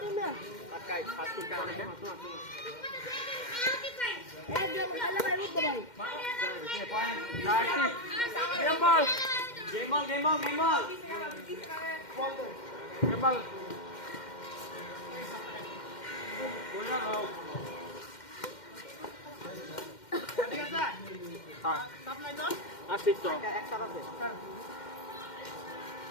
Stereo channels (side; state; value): right; late; 2.1 ms